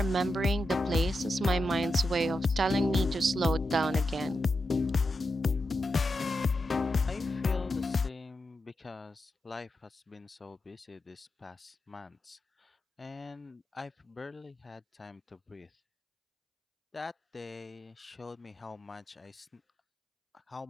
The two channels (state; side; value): normal; both; correlation 0.88